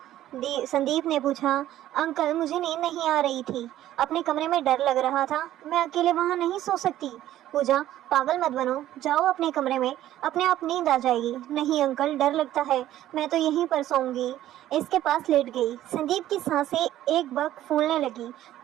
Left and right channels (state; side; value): quieter; left; 13.2 dB